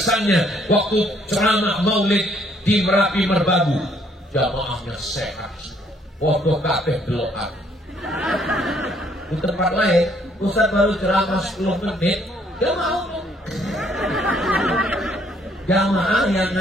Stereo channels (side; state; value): both; normal; correlation 0.66